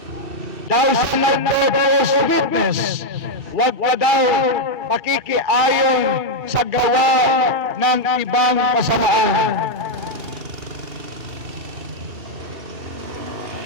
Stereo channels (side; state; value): left; late; 2.7 ms